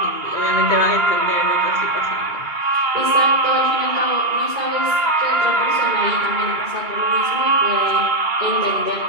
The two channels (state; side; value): late; left; 2.3 ms